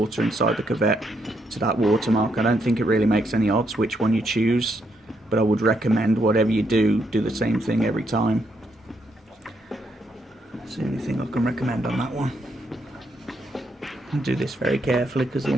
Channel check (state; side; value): normal; both; correlation 0.77